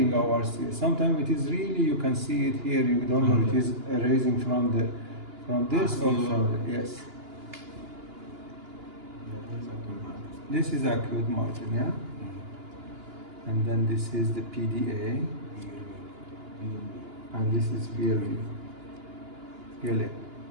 Sometimes it is really, you can see it here, you don't know it is arising from this or from the, yes. This is acute margin, yeah? And then this is the PDA, and this is PLA,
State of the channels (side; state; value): left; late; 2.9 ms